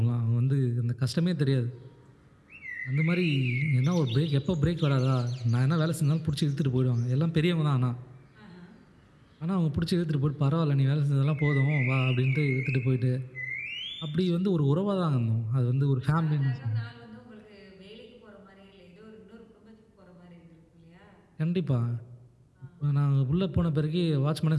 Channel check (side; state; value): both; identical; correlation 1.00